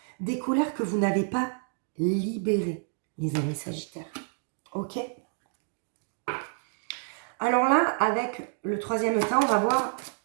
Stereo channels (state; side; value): silent; left; digital silence